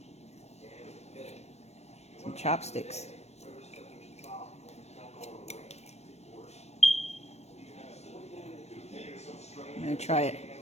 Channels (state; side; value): late; right; 0.31 ms